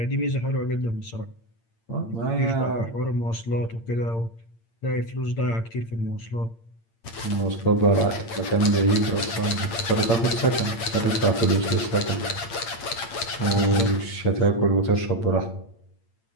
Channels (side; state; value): right; late; 8.8 ms